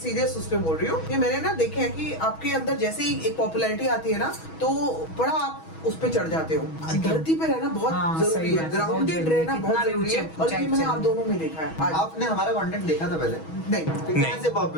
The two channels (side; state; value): right; late; 6.2 ms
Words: उस पे बोल रही हूँ कि मैंने ना देखे है कि आपके अंदर जैसे ही एक पॉपुलैरिटी आती है ना, तो बड़ा आप उस पे चढ़ जाते हो। धरती पे रहना बहुत जरूरी सही है, बात है, ग्राउंडेड बहुत रहना जरूरी, बहुत कितना भी जरूरी है। ऊंचे और ये मैंने ऊंचाई आप दोनों में देखा है। आज आपने हमारा कंटेंट देखा था पहले? नहीं, कैसे